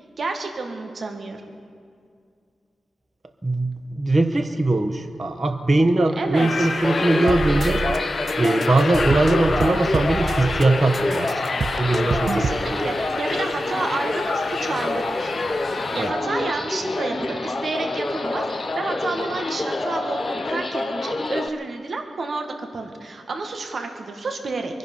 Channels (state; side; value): normal; both; correlation 0.92